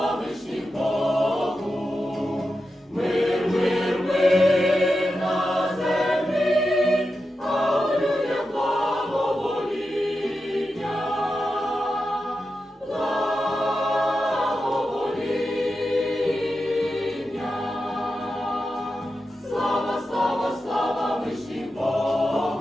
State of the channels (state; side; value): normal; both; correlation 0.90